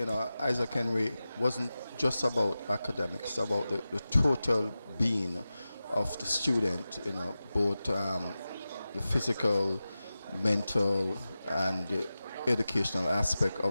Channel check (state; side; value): inverted; both; correlation -0.95